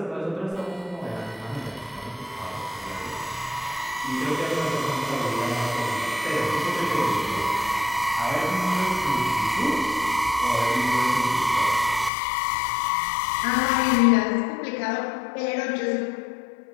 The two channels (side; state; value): right; drops out; at 12.1 s